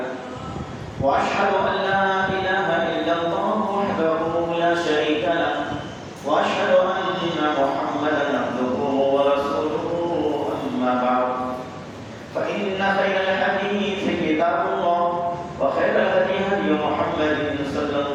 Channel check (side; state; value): both; identical; correlation 1.00